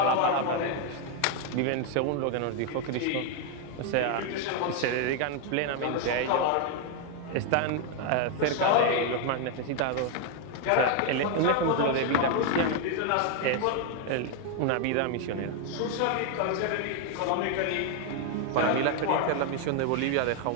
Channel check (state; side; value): different; both; correlation 0.01